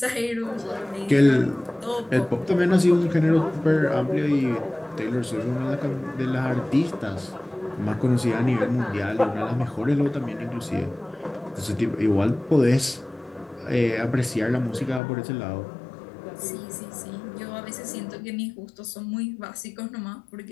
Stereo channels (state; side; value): drops out; right; at 15.0 s